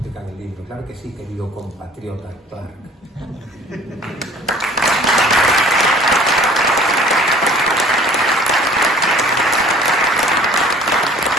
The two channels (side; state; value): both; normal; correlation 0.50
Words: en el libro. Claro que sí, querido compatriota Clark.